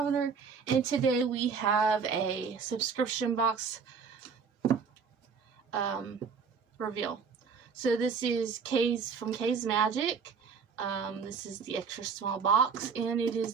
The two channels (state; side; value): quieter; left; 5.7 dB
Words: and today we have a subscription box reveal. So this is K's from K's Magic. This is the extra small box, and it is